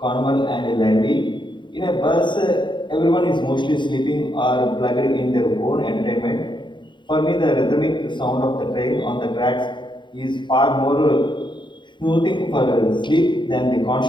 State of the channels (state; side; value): late; right; 0.23 ms